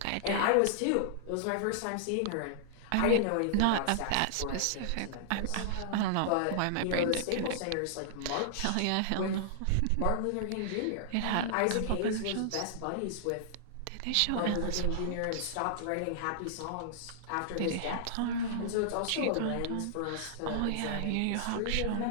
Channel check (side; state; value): both; different; correlation -0.01